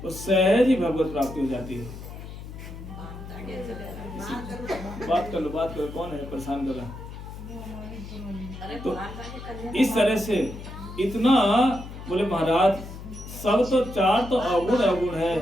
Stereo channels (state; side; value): noise; left; hum, 12 dB below the sound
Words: तो सहज ही भगवत प्राप्ति हो जाती है। बात कर लो कौन है परेशान कर रहा? तो इस तरह से इतना बोले महाराज सब तो 4 तो अवगुण है